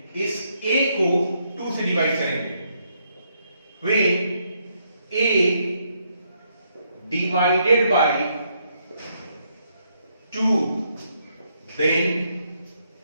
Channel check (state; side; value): inverted; both; correlation -0.75